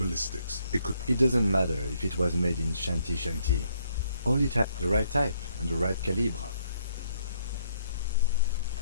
it could... It doesn't matter if it was made in Shanty. All it had the right type and the right calibre.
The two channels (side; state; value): both; inverted; correlation -0.70